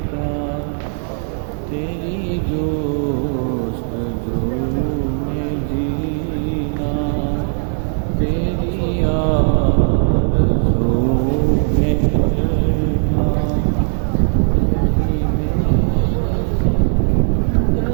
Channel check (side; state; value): left; silent; 66 dB below the other